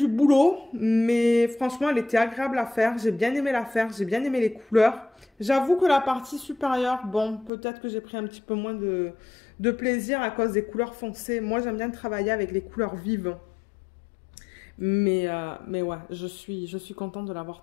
boulot, mais franchement, elle était agréable à faire. J'ai bien aimé la faire, j'ai bien aimé les couleurs. J'avoue que la partie supérieure, bon, peut-être que j'ai pris un petit peu moins de plaisir à cause des couleurs foncées. Moi, j'aime bien travailler avec les couleurs vives. Mais ouais, je suis contente de l'avoir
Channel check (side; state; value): right; drops out; at 7.5 s